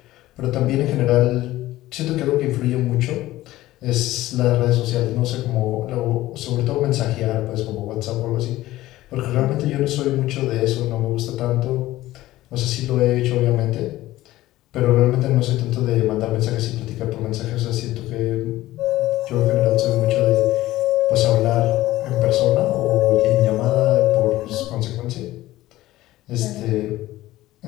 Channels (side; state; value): right; quieter; 16.2 dB